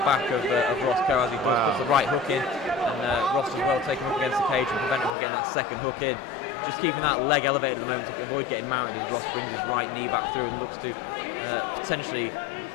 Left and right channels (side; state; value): right; drops out; at 5.1 s